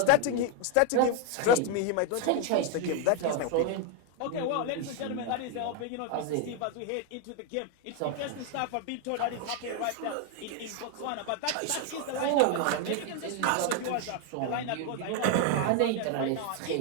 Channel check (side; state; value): both; different; correlation 0.01